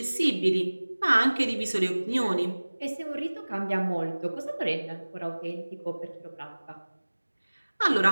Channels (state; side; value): inverted; both; correlation -1.00